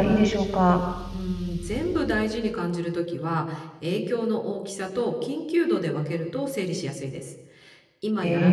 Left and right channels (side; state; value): both; identical; correlation 1.00